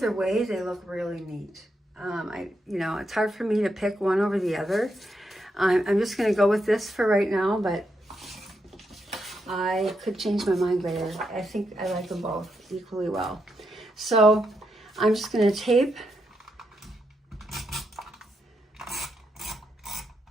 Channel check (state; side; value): normal; both; correlation 0.82